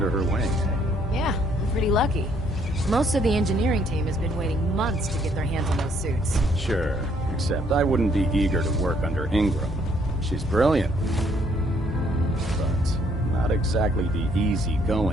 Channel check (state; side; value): normal; both; correlation 0.66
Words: her wing. Yeah, I'm pretty lucky. Most of the engineering team has been waiting months to get their hands on those suits. Sure, except I wouldn't be eager to work under Ingram. She's brilliant, but not exactly the